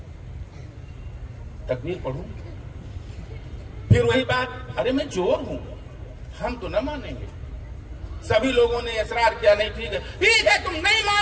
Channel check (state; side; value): identical; both; correlation 1.00